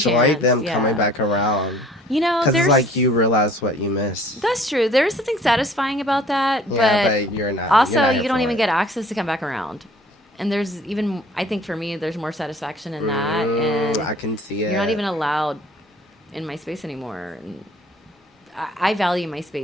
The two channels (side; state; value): both; normal; correlation 0.53